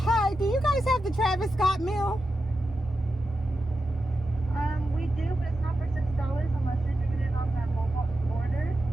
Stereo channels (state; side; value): normal; both; correlation 0.90